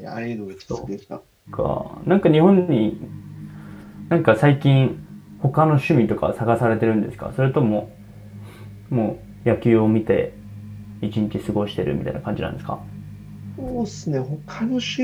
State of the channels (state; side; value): identical; both; correlation 1.00